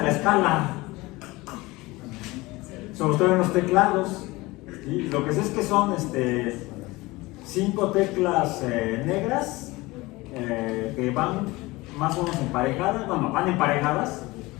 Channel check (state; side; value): quieter; right; 21.3 dB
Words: la escala, sobre todo en los teclados. ¿Sí? Lo que sé es que son 5 teclas negras que van más o menos emparejadas, bueno, van emparejadas